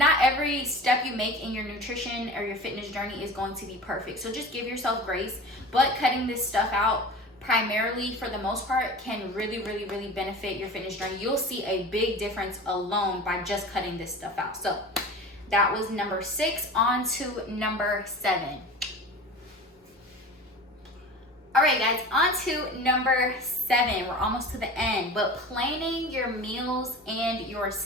every step you make in your nutrition or your fitness journey is going to be perfect. So just give yourself grace. But cutting this stuff out, primarily for the most part, can really, really, really benefit your fitness journey. You'll see a big difference alone by just cutting this stuff out. So that was number 6. On to number 7. All right, guys, on to number 7. We're almost to the end, but planning your meals and your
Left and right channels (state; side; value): normal; both; correlation 0.36